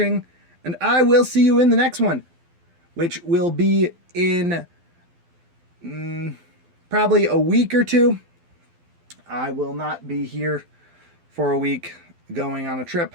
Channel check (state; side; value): late; left; 12 ms